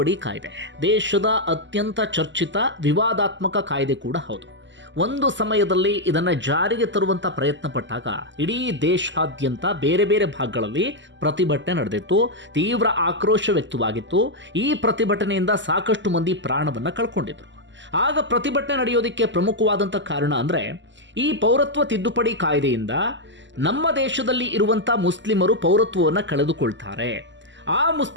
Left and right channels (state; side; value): late; left; 0.54 ms